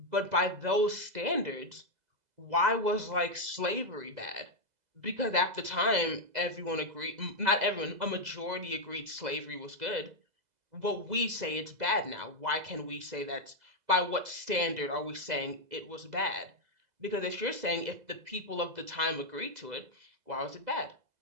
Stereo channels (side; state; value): left; late; 2.0 ms